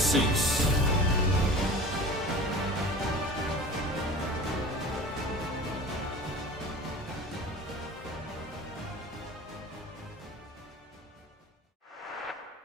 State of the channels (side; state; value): both; normal; correlation 0.38